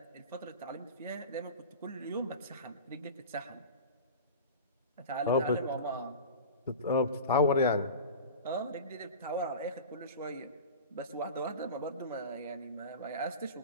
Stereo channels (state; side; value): inverted; both; correlation -0.33